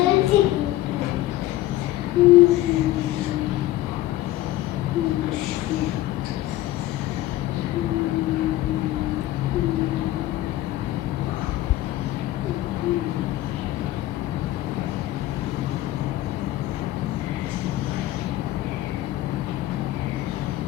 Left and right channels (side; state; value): right; quieter; 15.4 dB